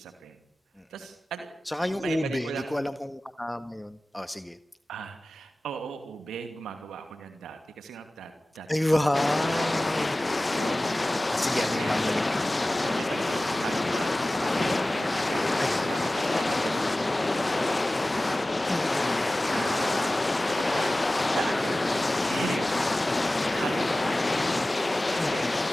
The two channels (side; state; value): both; normal; correlation 0.97